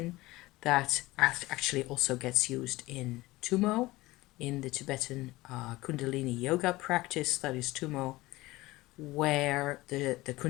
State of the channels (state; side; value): quieter; right; 19.4 dB